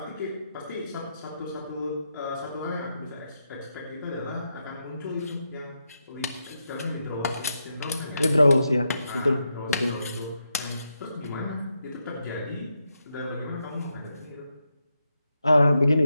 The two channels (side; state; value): both; inverted; correlation -0.84